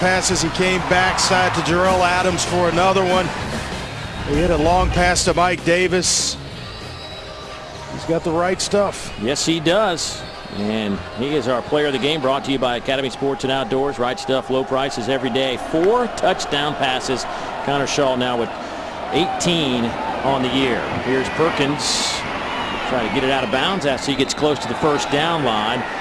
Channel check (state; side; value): identical; both; correlation 1.00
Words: He came backside to Jarrell Adams for another one. He hit a long pass to Mike Davis. He's got the right stuff. Yes, he does. And he is our player of the game, brought to you by Academy Sports and Outdoors. Right stuff, low prices every day. 4 touchdown passes. Connor Shaw now with 18 on the year. Here's Perkins trying to get it out of bounds after he gets close to the first down line.